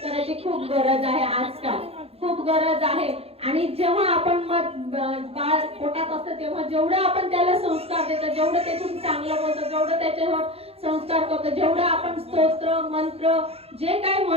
खूप गरज आहे, आजकाल खूप गरज आहे. आणि जेव्हा आपण बाळ पोटात असतं तेव्हा जेवढं आपण त्याला संस्कार देतो, जेवढं त्याच्यातून चांगलं बोलतो, जेवढं त्याच्यावर संस्कार करतो, जेवढं आपण स्तोत्र मंत्र जे काय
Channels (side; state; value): left; late; 0.29 ms